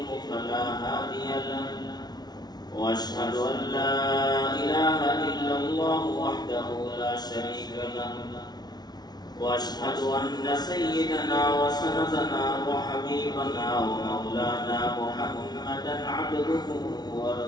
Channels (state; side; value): late; right; 0.19 ms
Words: فلا هادي له وأشهد أن لا إله إلا الله وحده لا شريك له وأشهد أن سيدنا وسندنا وحبيبنا ومولانا محمدا عبده